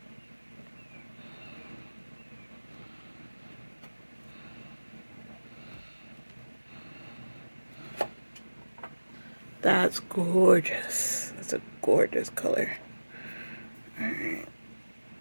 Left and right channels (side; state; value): both; inverted; correlation -1.00